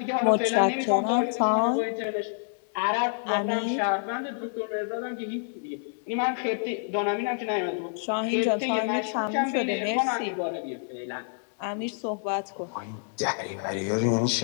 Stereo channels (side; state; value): right; silent; digital silence